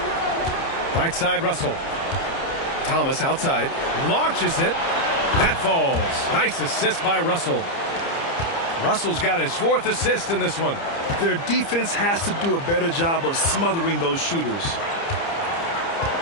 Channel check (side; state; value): right; late; 30 ms